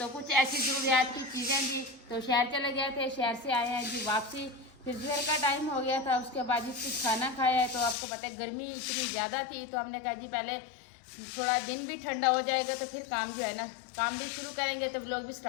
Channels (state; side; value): drops out; right; at 8.0 s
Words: कुछ ऐसी ज़रूरियात की चीज़ें जी, तो शहर चले गए थे। शहर से आए हैं जी वापसी, फिर दोपहर का टाइम हो गया था। उसके बाद जी कुछ खाना खाया है। तो आपको पता है गर्मी इतनी ज़्यादा थी, तो हमने कहा जी पहले थोड़ा दिन भी ठंडा हो जाएगा तो फिर काम जो है ना काम भी शुरू करेंगे, तो व्लॉग भी